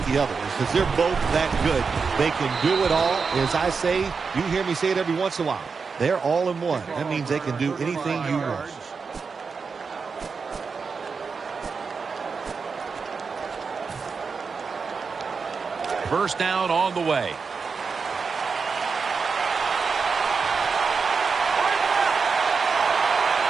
the other because they're both that good. They can do it all. As I say, you hear me say it every once in a while. They're all in one. That means they can do anything you want. First down on the way.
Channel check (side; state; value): left; quieter; 5.2 dB